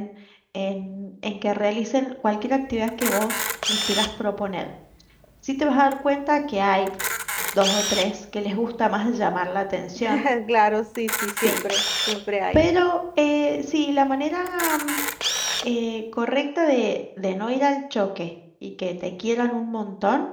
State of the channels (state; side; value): identical; both; correlation 1.00